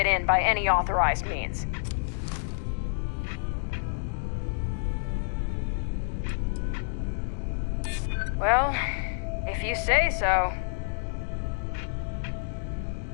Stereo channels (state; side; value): silent; right; digital silence